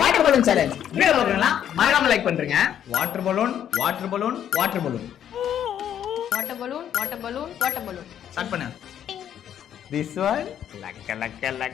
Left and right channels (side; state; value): right; quieter; 9.9 dB